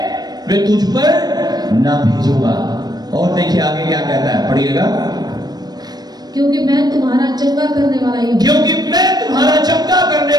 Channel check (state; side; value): late; left; 0.19 ms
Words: वे तुझ पर ना भेजूंगा। और देखिए आगे क्या कहता है, पढ़िएगा। क्योंकि मैं तुम्हारा चंगा करने वाला ही हूं, क्योंकि मैं तुम्हारा चंगा करने